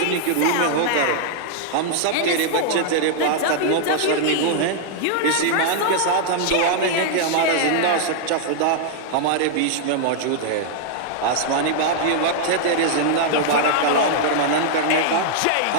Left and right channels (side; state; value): both; different; correlation -0.01